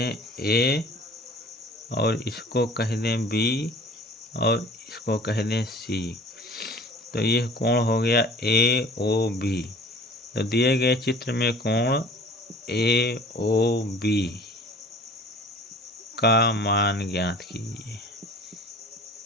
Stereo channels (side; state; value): both; normal; correlation 0.46